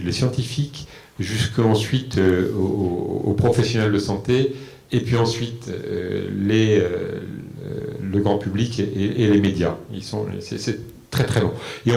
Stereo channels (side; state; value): both; identical; correlation 1.00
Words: les scientifiques jusqu'ensuite aux professionnels de santé, et puis ensuite le grand public et les médias. C'est très très long. Et